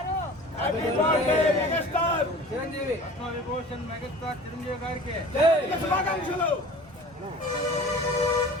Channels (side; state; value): both; normal; correlation 0.42